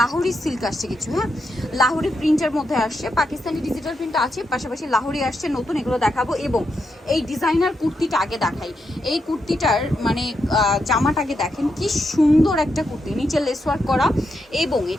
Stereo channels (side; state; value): both; normal; correlation 0.83